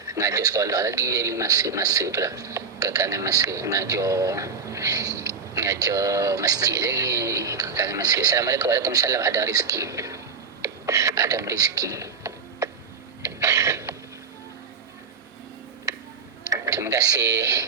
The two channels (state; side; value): quieter; left; 5.5 dB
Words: Mengajar sekolah lagi, jadi masa tu lah, kekangan masa mengajar masjid lagi, kekangan masa. Assalamualaikum. Waalaikumsalam. Adam Rizki. Terima kasih